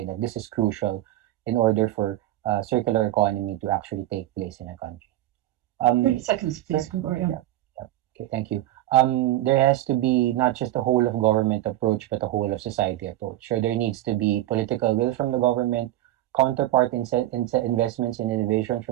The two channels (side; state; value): left; quieter; 14.8 dB